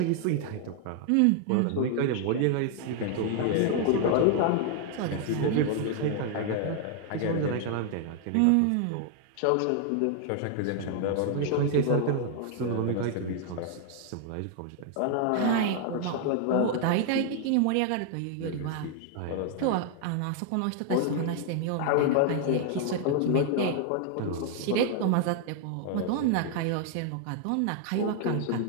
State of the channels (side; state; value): both; different; correlation 0.00